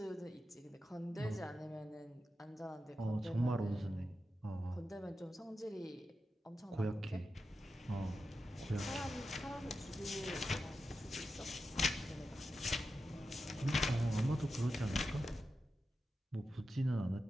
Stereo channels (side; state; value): both; normal; correlation 0.90